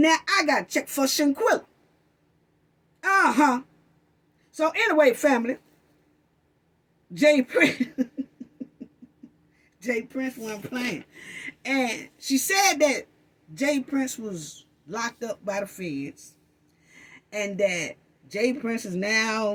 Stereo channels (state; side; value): identical; both; correlation 1.00